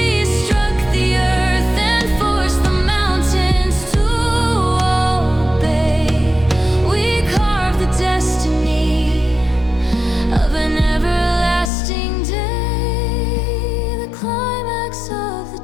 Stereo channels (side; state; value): right; drops out; at 11.7 s